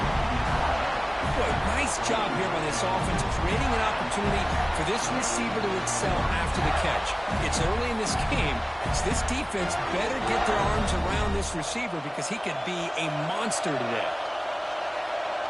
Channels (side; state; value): both; identical; correlation 1.00